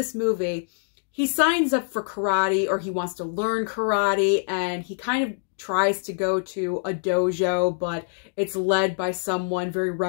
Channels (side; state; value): right; silent; digital silence